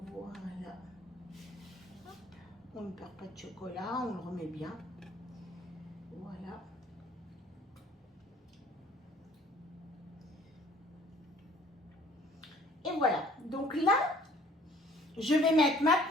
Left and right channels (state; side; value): normal; both; correlation 0.55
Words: Hop. On ne perd pas de chocolat, on le remet bien. Voilà. Et voilà. Donc là, je vais mettre